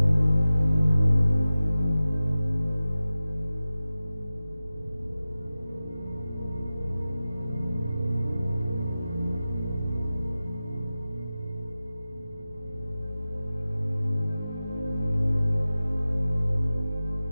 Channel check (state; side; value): inverted; both; correlation -0.95